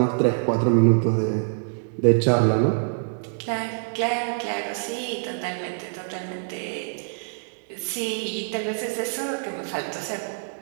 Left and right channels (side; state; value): left; silent; digital silence